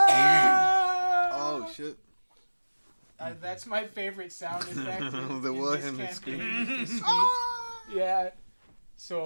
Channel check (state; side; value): inverted; both; correlation -1.00